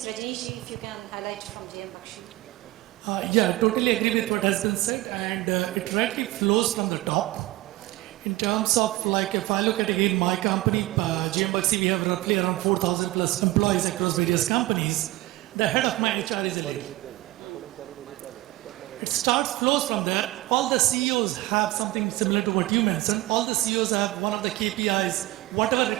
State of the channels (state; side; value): quieter; left; 18.1 dB